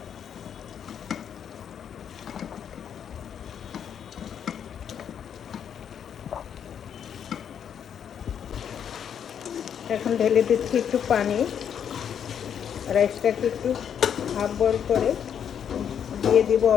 এখন ঢেলে দিচ্ছি একটু পানি, রাইসটাকে একটু হাফ বয়েল করে দিয়ে দিব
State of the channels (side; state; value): right; quieter; 8.4 dB